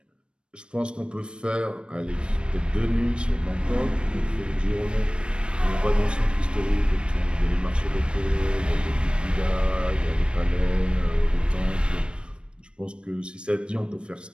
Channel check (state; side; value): late; left; 0.056 ms